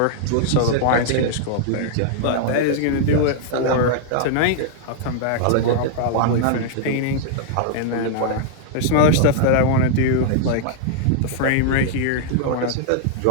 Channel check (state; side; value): different; both; correlation -0.01